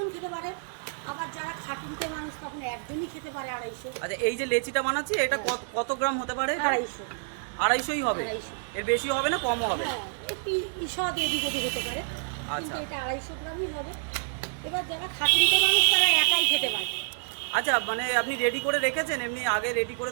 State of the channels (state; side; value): silent; left; digital silence